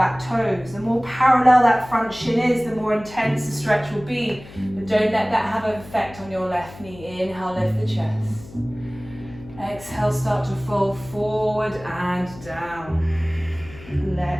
toes. The more parallel that front shin is, the more intense the stretch will be. But don't let that have an effect on your left knee. Inhale, lift the chest. Exhale, start to fold forward and down.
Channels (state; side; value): noise; left; hum, 18 dB below the sound